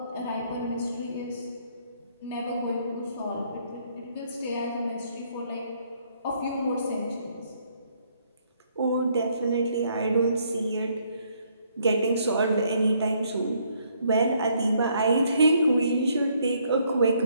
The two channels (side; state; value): both; inverted; correlation -0.69